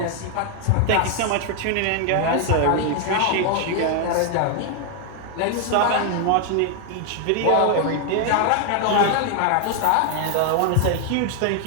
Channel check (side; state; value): both; different; correlation 0.00